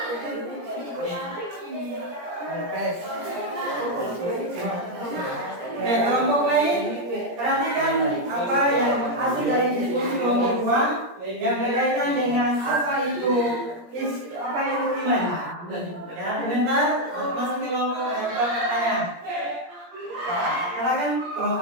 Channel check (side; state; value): left; late; 17 ms